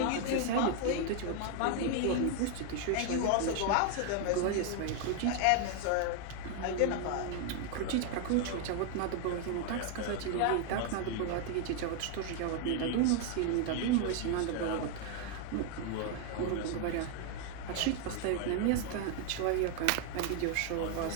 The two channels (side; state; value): both; different; correlation 0.01